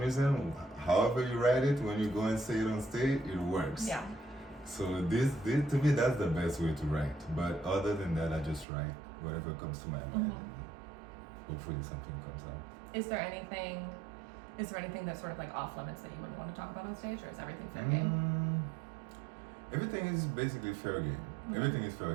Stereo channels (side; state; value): left; drops out; at 8.7 s